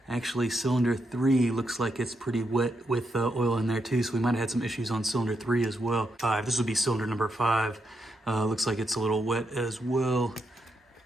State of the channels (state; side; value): normal; both; correlation 0.81